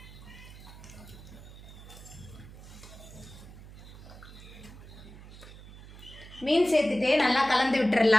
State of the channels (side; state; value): right; noise; hum, 17 dB below the sound